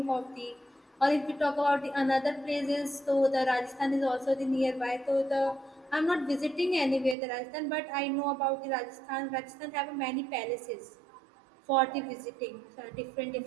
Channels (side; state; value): left; drops out; at 7.2 s